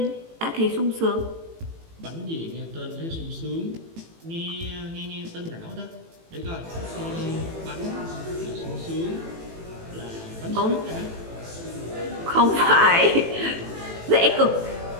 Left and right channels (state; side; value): late; left; 18 ms